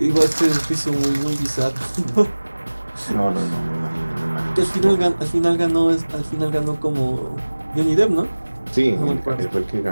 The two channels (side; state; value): both; inverted; correlation -1.00